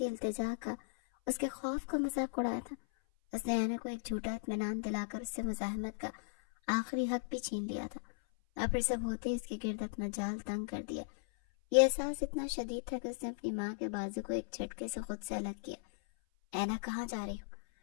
التجا کا، اس کے خوف کا مذاق اڑایا تھا۔ اس نے اینا کو ایک جھوٹا اطمینان دلا کر اس سے مزاحمت کا آخری حق بھی چھین لیا تھا، اور پھر سب ہوتے اس کے گرد اپنا جال تنگ کر دیا۔ یہ احساس اتنا شدید تھا کہ اس نے اپنی ماں کے بازو کو ایک جھٹکے سے خود سے الگ کیا۔ اینا کہاں جا رہی ہو؟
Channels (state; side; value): silent; right; 53 dB below the other